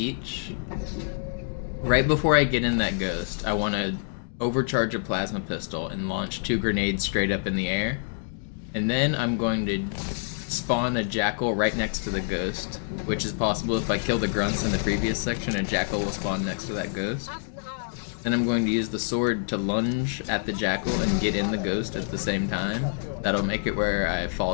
Right before I get in that ghost, I want to overcharge a plasma pistol and launch 2 grenades straight up in the air. And then I'm going to spawn a jackal right next to the ghost, which is possible if I kill the grunts in the previous section, a jackal will spawn next to that ghost. Then I'm going to use the sword to lunge at the jackal and get in the ghost at the same time. That'll make it where I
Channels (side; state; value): right; silent; digital silence